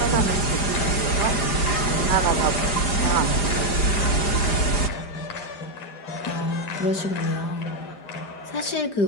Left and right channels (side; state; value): right; late; 4.9 ms